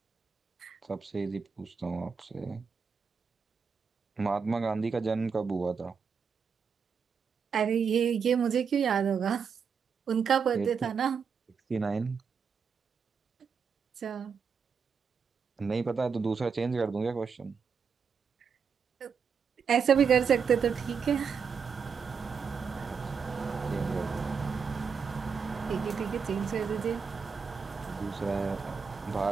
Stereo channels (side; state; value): left; quieter; 6.1 dB